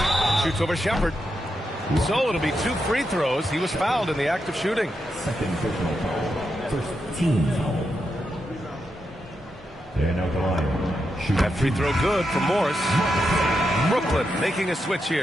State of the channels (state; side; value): normal; both; correlation 0.85